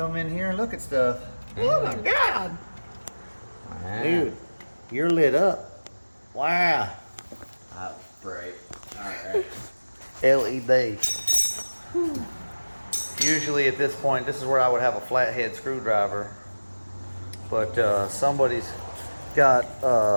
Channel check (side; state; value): both; inverted; correlation -1.00